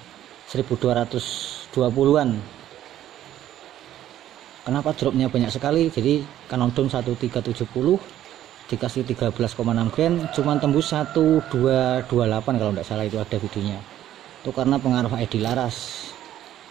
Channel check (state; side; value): quieter; left; 12.2 dB